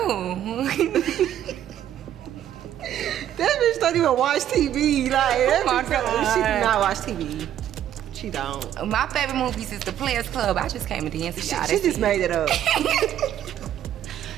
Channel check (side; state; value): left; quieter; 11.1 dB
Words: That bitch don't even watch TV. Like, that Oh my bitch, she do God. not watch TV. She don't. My favorite movies is The Players Club. I just came to dance to y'all. She just made it up.